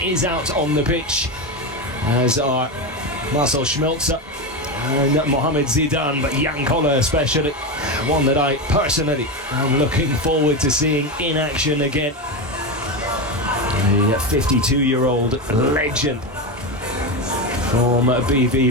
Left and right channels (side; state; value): both; normal; correlation 0.16